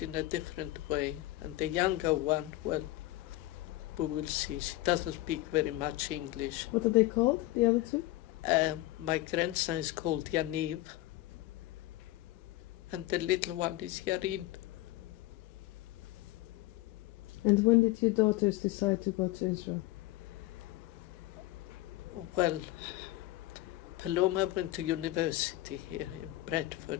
in a different way. And the younger one, well, we will see. She doesn't speak very much English. What are they called, the other two? My grandson is called Yaniv, and the little one is Yarim. And when did your daughters decide to go to Israel? Well, Paloma went to university here in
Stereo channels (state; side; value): quieter; right; 17.5 dB